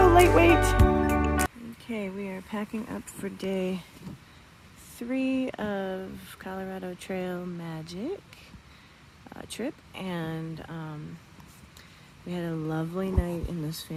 lightweight. Okay, we are packing up for day 3 of Colorado Trail Magic trip, and we had a lovely night in this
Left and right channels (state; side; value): identical; both; correlation 1.00